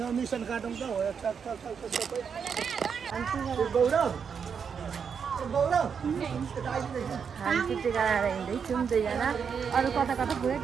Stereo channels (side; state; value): left; quieter; 6.6 dB